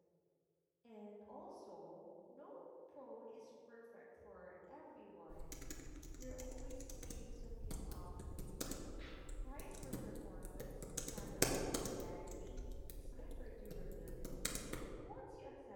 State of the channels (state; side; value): identical; both; correlation 1.00